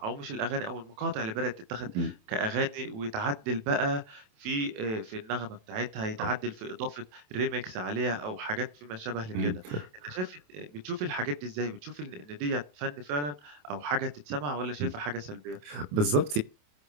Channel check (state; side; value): late; left; 27 ms